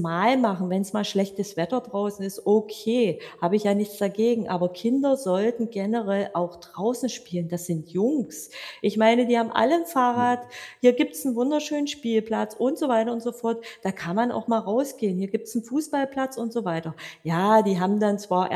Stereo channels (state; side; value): identical; both; correlation 1.00